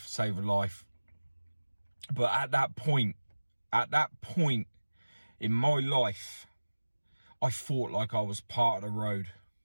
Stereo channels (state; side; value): inverted; both; correlation -1.00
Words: save a life. But at that point in my life, I fought like I was part of the road.